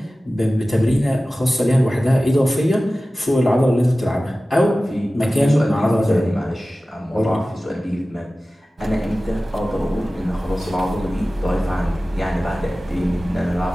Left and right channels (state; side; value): normal; both; correlation 0.96